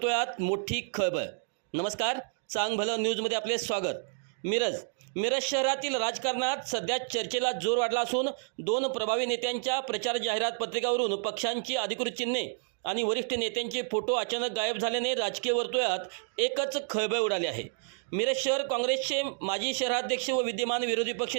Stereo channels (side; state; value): left; silent; digital silence